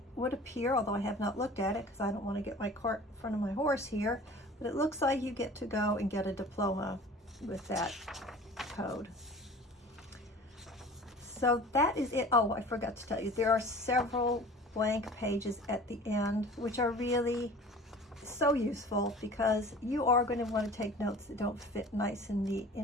would appear, although I have not looked at it because I don't want to get my cart in front of my horse here, but it looks like you get to go and get a diploma with that code. So that is it. Oh, I forgot to tell you, there are several blank pages at the end, which are really so useful because you are going to want to take notes that don't fit nice and neat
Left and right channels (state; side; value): normal; both; correlation 0.43